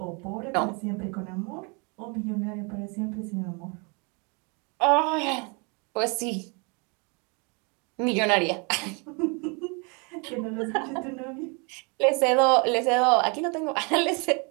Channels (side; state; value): left; quieter; 32.3 dB